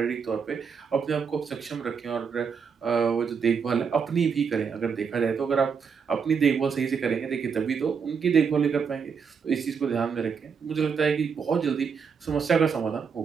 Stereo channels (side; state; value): left; quieter; 6.2 dB